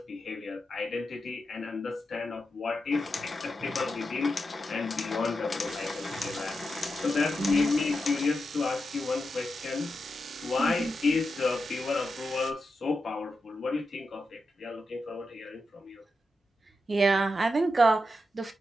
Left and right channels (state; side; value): normal; both; correlation 0.88